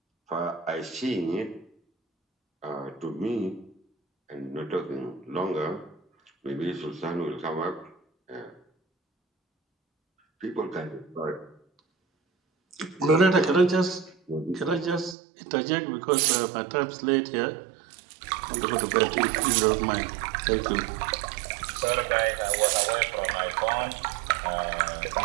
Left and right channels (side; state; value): left; drops out; at 15.2 s